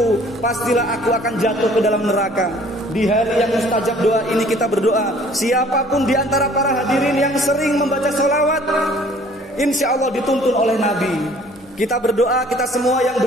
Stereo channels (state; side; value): normal; both; correlation 0.54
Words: pastilah aku akan jatuh ke dalam neraka. Di hari yang mustajab doa ini kita berdoa, siapapun di antara para hadirin yang sering membaca sholawat, insya Allah dituntun oleh Nabi. Kita berdoa, kita semua yang